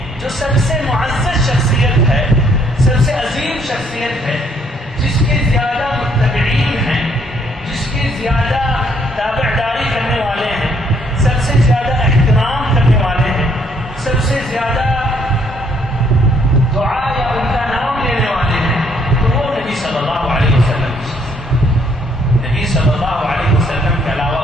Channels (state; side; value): normal; both; correlation 0.67